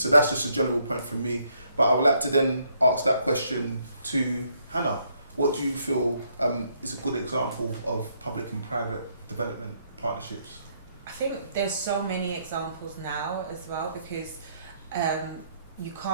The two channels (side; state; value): both; inverted; correlation -0.72